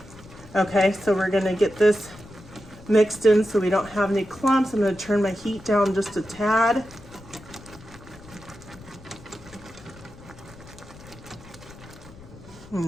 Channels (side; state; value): left; noise; rumble, 20 dB below the sound